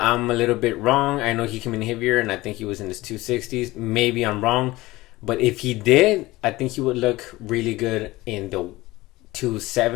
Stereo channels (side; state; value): right; quieter; 19.1 dB